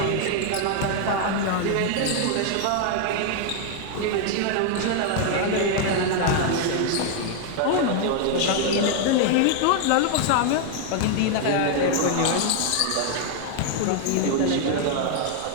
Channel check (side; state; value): both; different; correlation 0.00